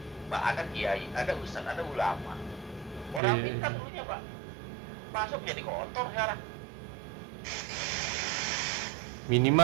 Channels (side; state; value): left; drops out; at 3.2 s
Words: Pak, ada kiai, ada ustaz, ada ulama. Orang pintar dulunya Pak, masuk jadi kotor sekarang.